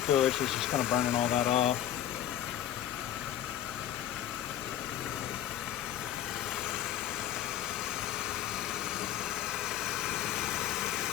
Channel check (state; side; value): quieter; right; 11.3 dB